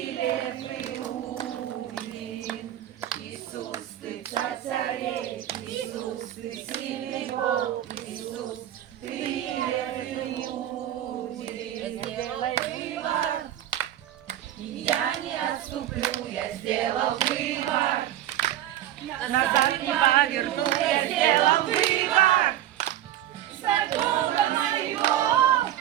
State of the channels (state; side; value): quieter; left; 12.4 dB